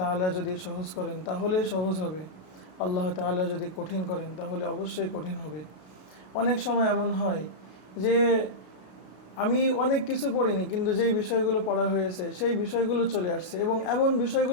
যদি সহজ করেন তাহলেই সহজ হবে, আল্লাহ তাআলা যদি কঠিন করেন তাহলে অবশ্যই কঠিন হবে। অনেক সময় এমন হয় যে আমি অনেক কিছু পড়িনি, কিন্তু যেই বিষয়গুলো পড়া হয়েছে সেই বিষয়গুলো চলে আসছে এবং এমন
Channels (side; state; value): right; late; 33 ms